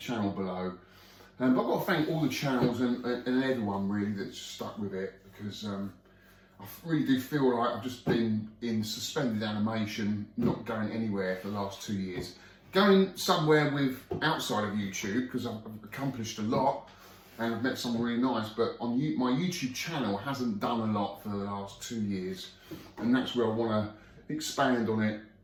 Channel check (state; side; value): identical; both; correlation 1.00